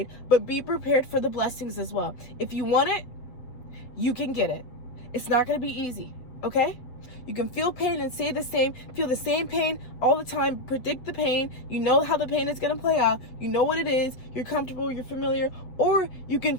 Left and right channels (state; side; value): late; right; 8.0 ms